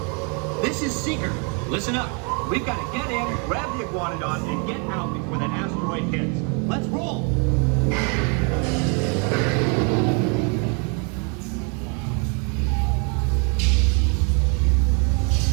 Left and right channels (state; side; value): quieter; left; 35.8 dB